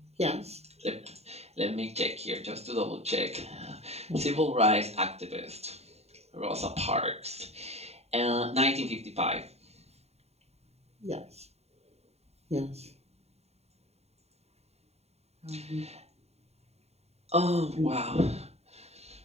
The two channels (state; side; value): late; left; 0.30 ms